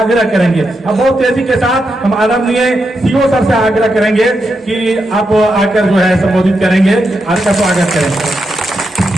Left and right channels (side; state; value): both; normal; correlation 0.84